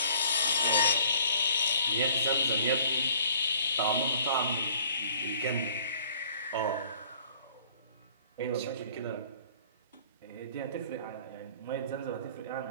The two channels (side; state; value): both; inverted; correlation -0.55